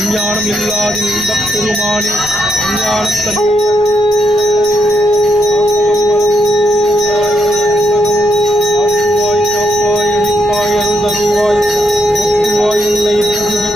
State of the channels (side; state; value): left; noise; rumble, 22 dB below the sound